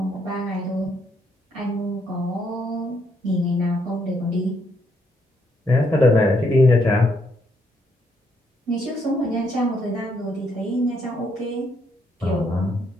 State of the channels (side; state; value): both; normal; correlation 0.73